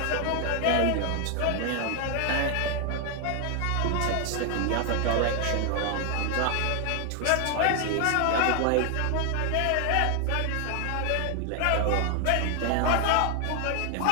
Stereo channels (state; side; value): different; both; correlation 0.00